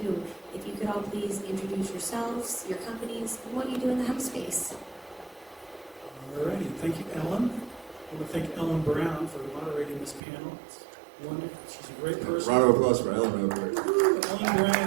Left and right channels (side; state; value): left; drops out; at 10.2 s